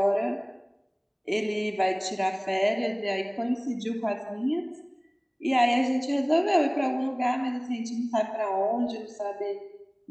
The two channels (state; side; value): identical; both; correlation 1.00